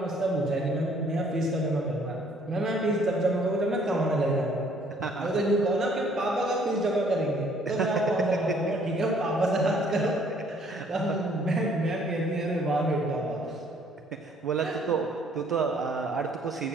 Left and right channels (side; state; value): both; normal; correlation 0.61